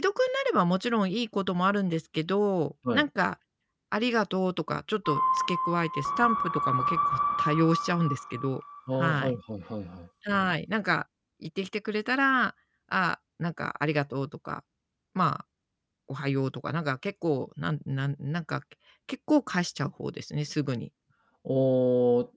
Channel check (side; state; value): both; identical; correlation 1.00